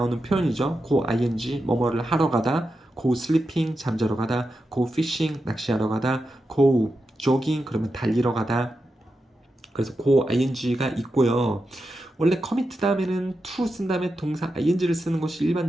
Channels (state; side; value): normal; both; correlation 0.89